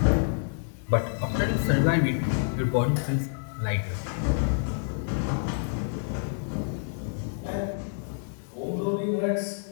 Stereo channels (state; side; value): silent; right; digital silence